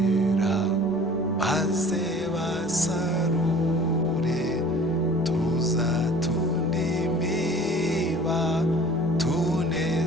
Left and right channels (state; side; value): normal; both; correlation 0.47